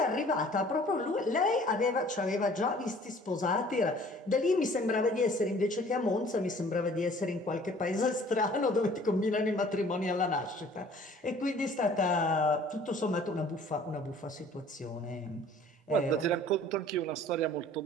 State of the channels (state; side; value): normal; both; correlation 0.52